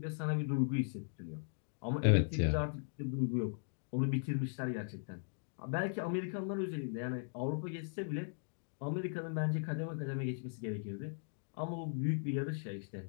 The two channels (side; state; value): right; silent; digital silence